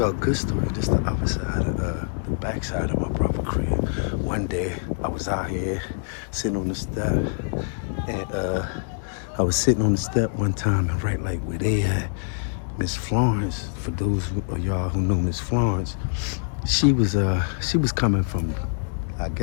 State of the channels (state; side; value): silent; right; 62 dB below the other